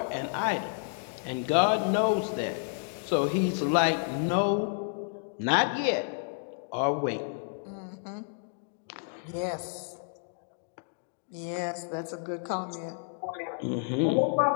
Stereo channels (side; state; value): right; silent; digital silence